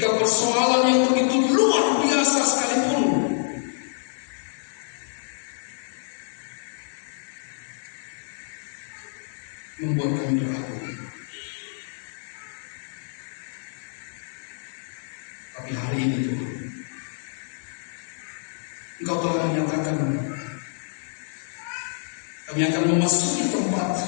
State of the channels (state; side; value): silent; right; digital silence